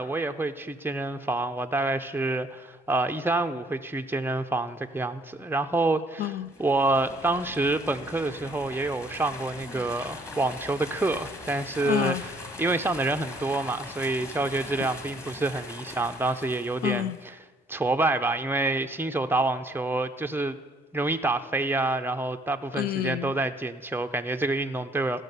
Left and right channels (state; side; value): normal; both; correlation 0.63